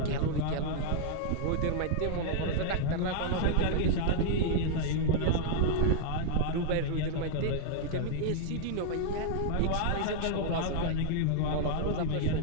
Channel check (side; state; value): both; different; correlation 0.00